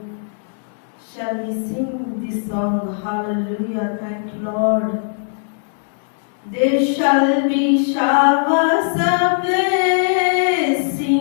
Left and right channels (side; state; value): right; silent; digital silence